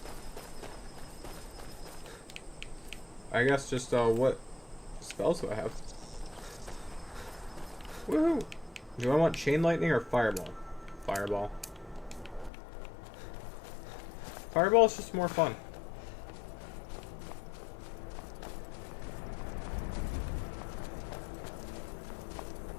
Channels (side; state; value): right; drops out; at 12.5 s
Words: I guess just, what spells do I have? Woohoo! Do I want Chain Lightning or Fireball? Fireball. Fireball is just more fun.